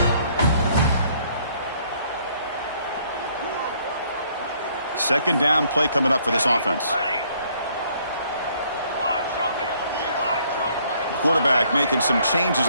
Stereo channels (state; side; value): inverted; both; correlation -0.65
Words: Second down play coming up for this offense. Quarterback making some changes